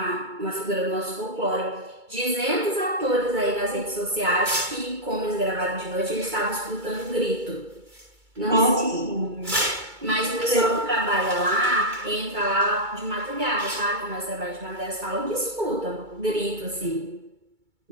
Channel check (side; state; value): left; late; 2.2 ms